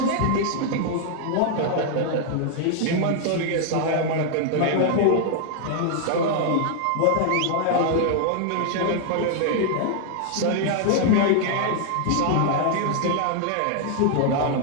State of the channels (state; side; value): different; both; correlation 0.00